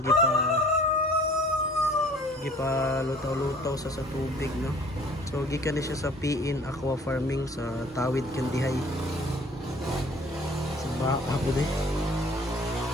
gipa lutaw-lutaw sa tubig no. So gikan na siya sa PN Aqua Farming sa Tawid Kandihay. Sa ako di.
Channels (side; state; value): both; normal; correlation 0.52